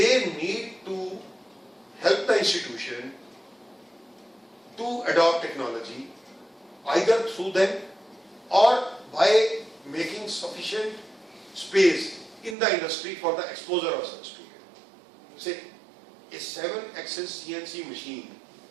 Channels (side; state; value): left; drops out; at 12.6 s